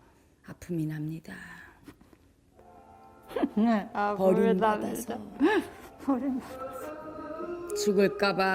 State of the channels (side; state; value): both; identical; correlation 1.00